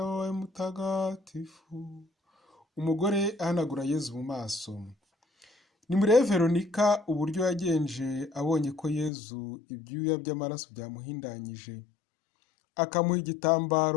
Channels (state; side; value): drops out; right; at 9.1 s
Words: wawe mutagatifu. Umugore ahanagura Yezu mu maso. Nimurebe Veronika uburyo yagenje abonye ko Yezu ibyuya by'amaraso byamuhindanyije, akamuha